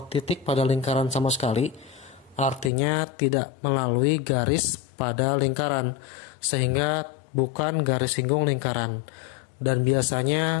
titik pada lingkaran sama sekali, artinya tidak melalui garis pada lingkaran, sehingga bukan garis singgung lingkaran. Dan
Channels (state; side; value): drops out; right; at 2.7 s